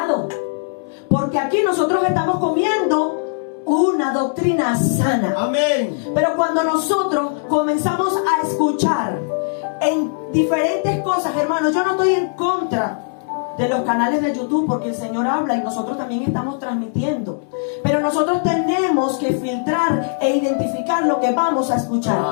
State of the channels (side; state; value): right; silent; 66 dB below the other